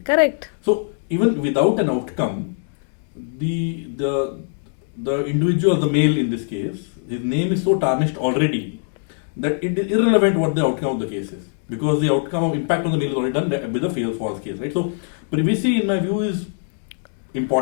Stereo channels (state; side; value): silent; right; digital silence